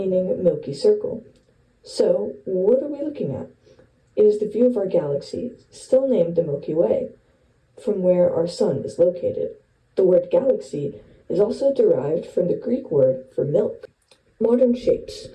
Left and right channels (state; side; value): identical; both; correlation 1.00